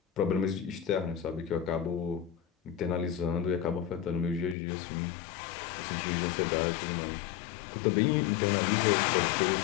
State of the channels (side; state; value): right; drops out; at 4.5 s